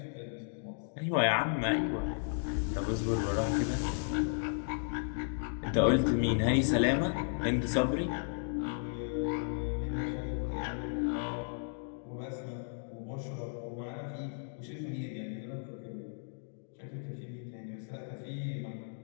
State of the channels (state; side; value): silent; right; digital silence